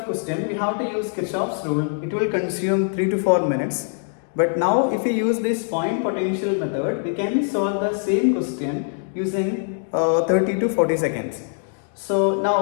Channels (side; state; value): right; silent; digital silence